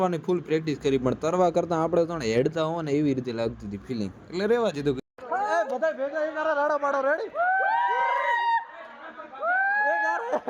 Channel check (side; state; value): both; identical; correlation 1.00